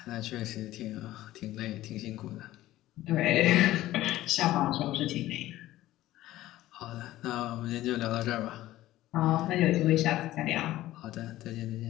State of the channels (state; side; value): quieter; right; 15.4 dB